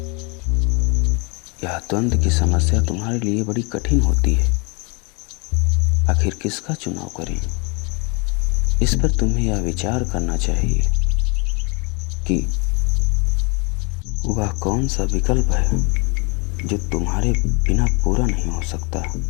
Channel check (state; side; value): quieter; right; 32.2 dB